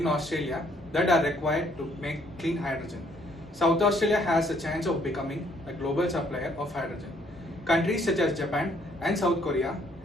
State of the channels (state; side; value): normal; both; correlation 0.66